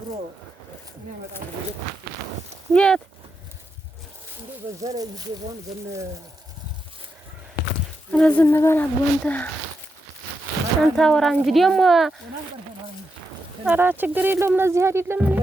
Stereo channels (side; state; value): both; normal; correlation 0.85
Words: የት ዝም በል አቦ አንተ አወራ እንጂ ደግሞ ኧረ ችግር የለውም። ለዚህ አይደለም እኔ